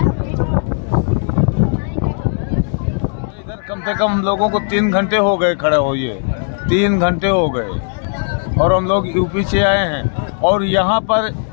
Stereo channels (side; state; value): right; silent; digital silence